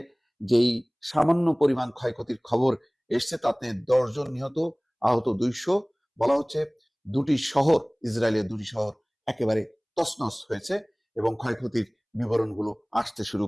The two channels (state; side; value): identical; both; correlation 1.00